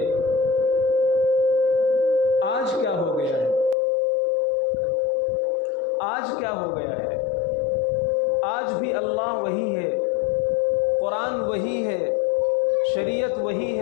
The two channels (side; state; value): right; drops out; at 3.8 s